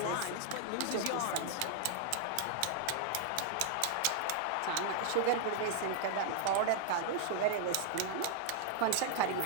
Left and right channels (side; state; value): both; different; correlation 0.00